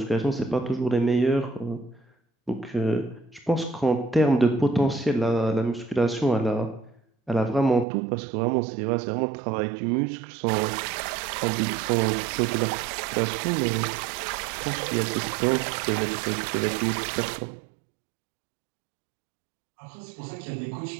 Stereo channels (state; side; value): drops out; left; at 7.9 s